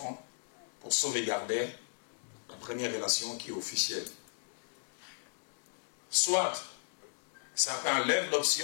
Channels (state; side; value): silent; right; digital silence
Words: pour sauvegarder la première relation qui est officielle. soit certains lèvent